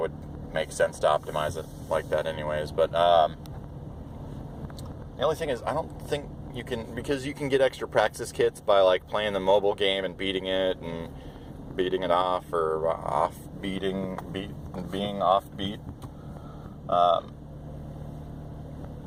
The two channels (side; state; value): both; identical; correlation 1.00